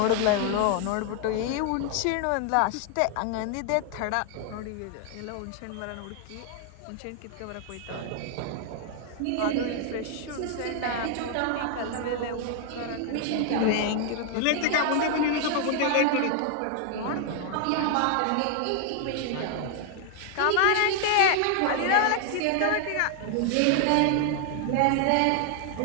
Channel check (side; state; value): both; different; correlation 0.00